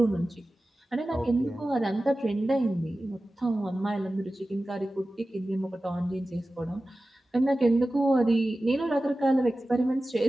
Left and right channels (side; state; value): both; normal; correlation 0.95